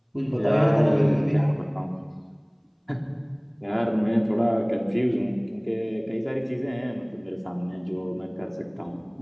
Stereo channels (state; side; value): identical; both; correlation 1.00